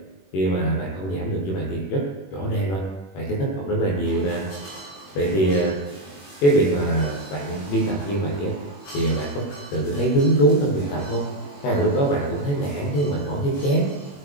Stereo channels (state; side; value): late; right; 21 ms